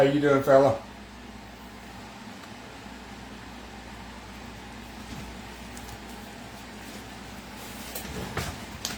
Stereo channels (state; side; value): identical; both; correlation 1.00